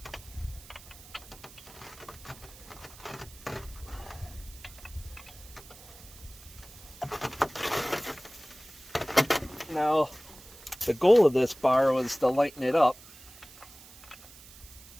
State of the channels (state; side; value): noise; right; hiss, 19 dB below the sound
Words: Now, the goal of this bar was to lighten it up.